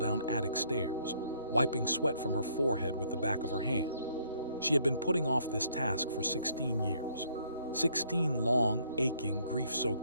attic stairs, wiping sweat from her forehead with the back of her hand. She had been putting off this task for 16 years. 16 long, aching,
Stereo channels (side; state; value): both; inverted; correlation -0.66